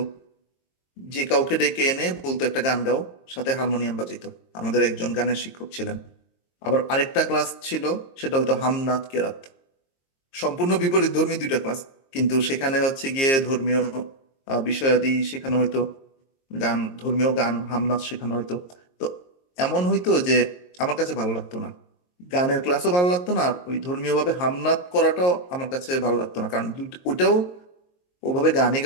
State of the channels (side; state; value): right; late; 22 ms